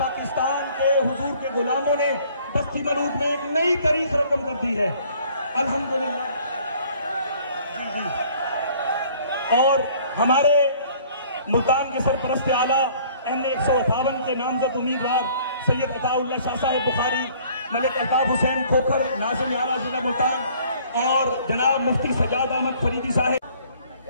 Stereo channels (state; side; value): inverted; both; correlation -0.56